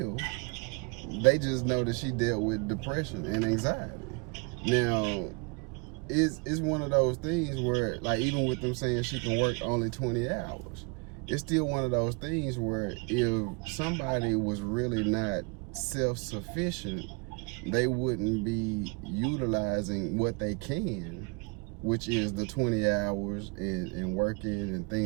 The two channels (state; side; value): quieter; left; 31.4 dB